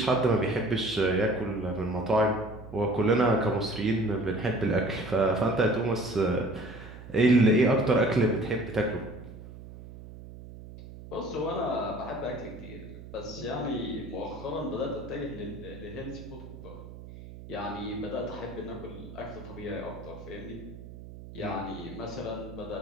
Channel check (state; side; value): noise; right; hum, 14 dB below the sound